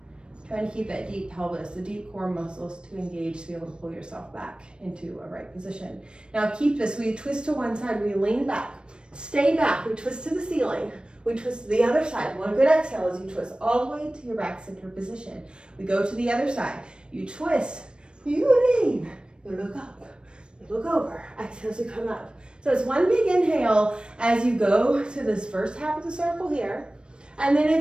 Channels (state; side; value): late; left; 0.054 ms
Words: Trying to keep that deep pelvis, the deep core muscles to engage to be able to pull yourself back into a right position. Now keep this, we twist to one side, we lean back, stay back, we twist to the ceiling, we twist to the other side. One good exhale as you twist all the way to your back center position. We go to the other side, you twist, you lean, you look up, you look over, exhale as you come up. So it's one big inhale as you go to this first half of the circle here. And then